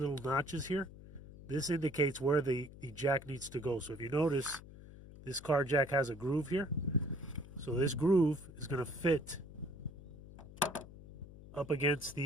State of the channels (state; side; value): noise; left; hum, 17 dB below the sound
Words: notches here. This indicates where the jack needs to go. So if you notice, this car jack has a groove here. So this groove is going to fit up against